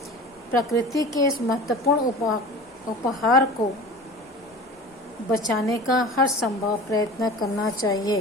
प्रकृति के इस महत्वपूर्ण उपहार को बचाने का हर संभव प्रयत्न करना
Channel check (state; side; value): normal; both; correlation 0.38